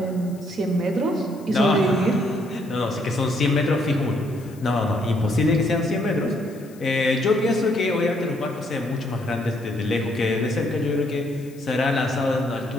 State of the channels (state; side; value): noise; left; hiss, 26 dB below the sound